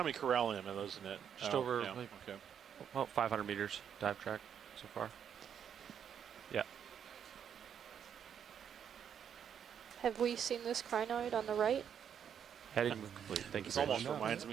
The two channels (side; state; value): left; quieter; 8.4 dB